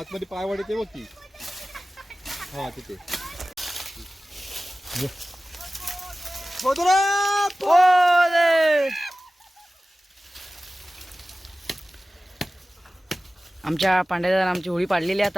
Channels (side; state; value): both; normal; correlation 0.96